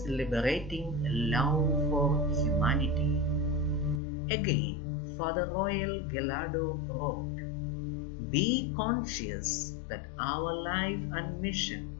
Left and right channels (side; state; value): right; drops out; at 4.0 s